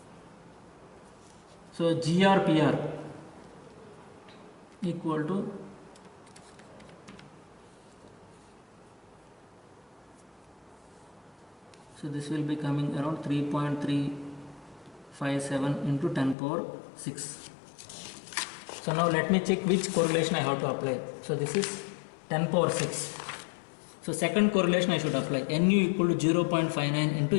So GRPR equal to so this will be coming around 3.357 into 10 power 6. So now let me check which correlation I have to apply. So this is 10 power 6. So second correlation I should apply. Nu equal to 0.59 into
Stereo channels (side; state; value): right; drops out; at 16.4 s